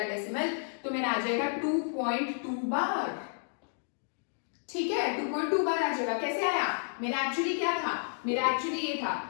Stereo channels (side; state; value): right; silent; digital silence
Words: डेसिमल, तो मेरा आ जाएगा 2.2 बार। ठीक है, 2.2 बार आ जाएगा। कैसे आया? मेरा एक्चुअली क्या था? मेरा एक्चुअली ये था